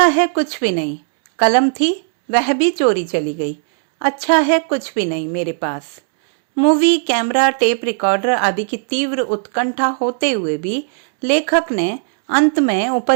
है कुछ भी नहीं। कलम थी, वह भी चोरी चली गई। अच्छा है कुछ भी नहीं मेरे पास। मूवी, कैमरा, टेप रिकॉर्डर आदि की तीव्र उत्कंठा होते हुए भी लेखक ने अंत में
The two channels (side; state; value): left; silent; digital silence